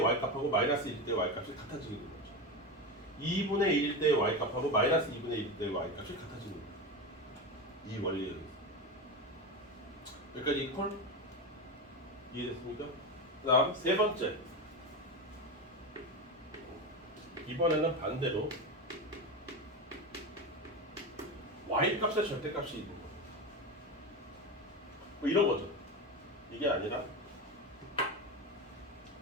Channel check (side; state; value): both; normal; correlation 0.19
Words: 마이너스 1일 때의 y값이 같아지게 되는 거죠. 2분의 1일 때의 y값하고 마이너스 2분의 1일 때의 y값이 같아지는 거예요. 이 원리에 의해서. 여기까지 콜? 이해됐습니까? 그 다음 세 번째. 이번에는 반대로 y값의 절대값이 있는 거예요. 뭐 이런 거죠. 이게 아니라